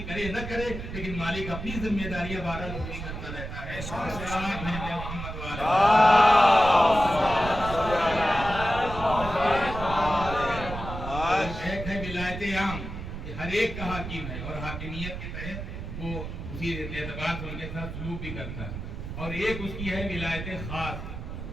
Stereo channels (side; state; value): right; noise; rumble, 8 dB below the sound